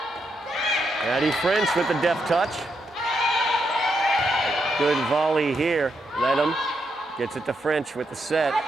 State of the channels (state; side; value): normal; both; correlation 0.81